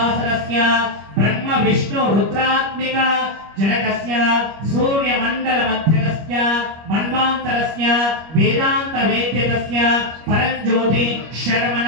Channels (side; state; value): left; late; 25 ms